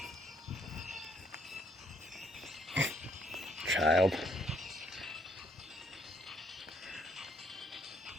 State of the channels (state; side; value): normal; both; correlation 0.69